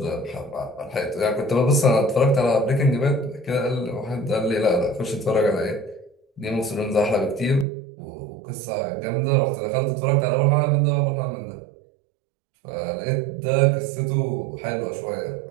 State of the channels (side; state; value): left; drops out; at 7.7 s